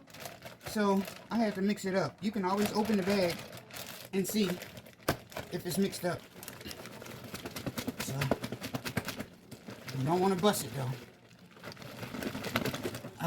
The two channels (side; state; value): both; identical; correlation 1.00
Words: So I had to mix it up. You can always open the bag and see if it's mixed up. You don't want to bust it though.